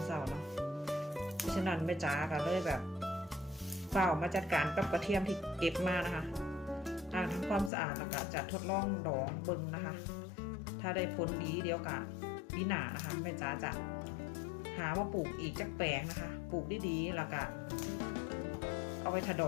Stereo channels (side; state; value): right; drops out; at 7.7 s